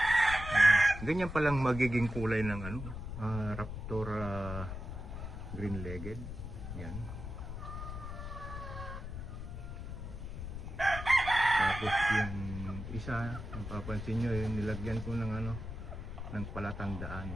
Ganyan palang magiging kulay ng Raptor green-legged. Yan. Tapos yung isa, mapapansin nyo, yung nilagyan ko ng ng palatandaan.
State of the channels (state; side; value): noise; left; rumble, 7 dB below the sound